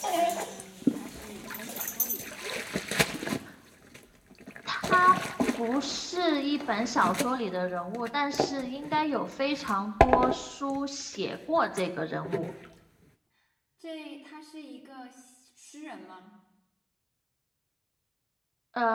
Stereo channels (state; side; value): identical; both; correlation 1.00